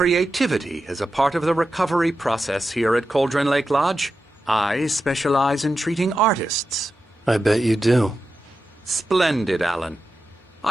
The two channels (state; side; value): normal; both; correlation 0.90